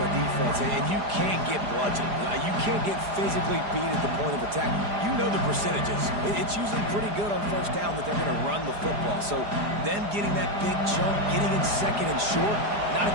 defense, and you can't get bludgeoned. You can't get physically beat at the point of attack. You know the percentages. It's usually pretty good on first down that they're going to run the football. So them getting that big chunk, getting in second and short, not a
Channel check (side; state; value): left; late; 4.9 ms